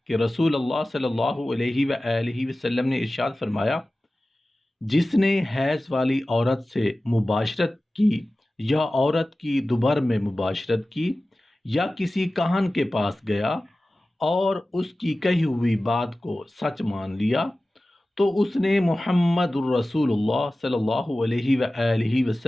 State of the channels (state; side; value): normal; both; correlation 0.96